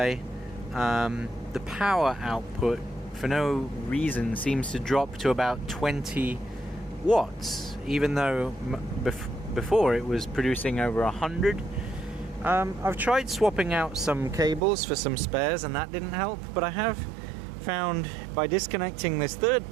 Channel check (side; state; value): left; drops out; at 14.6 s